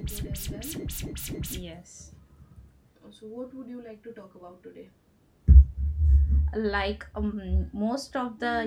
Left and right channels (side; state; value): both; identical; correlation 1.00